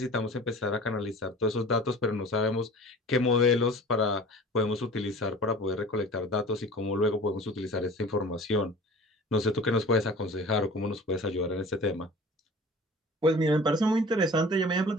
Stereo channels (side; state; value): both; normal; correlation 0.42